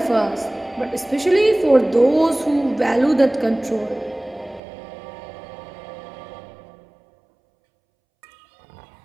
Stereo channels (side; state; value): left; drops out; at 4.6 s